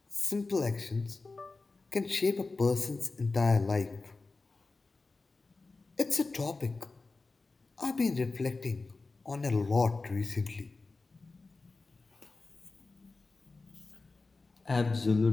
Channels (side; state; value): right; quieter; 3.7 dB